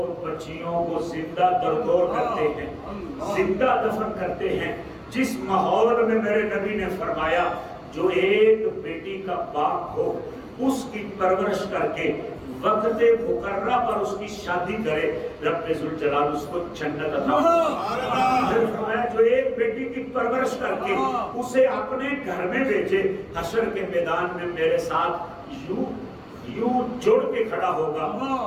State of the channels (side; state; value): both; identical; correlation 1.00